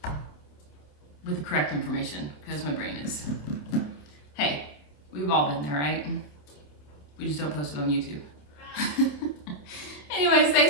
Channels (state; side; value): late; right; 27 ms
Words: with the correct information because my brain is, hey, we've all been there, right? We just don't post it on YouTube. Anyways,